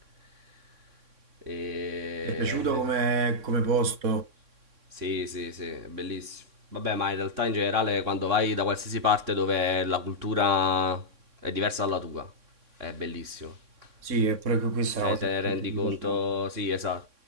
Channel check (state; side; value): late; left; 3.6 ms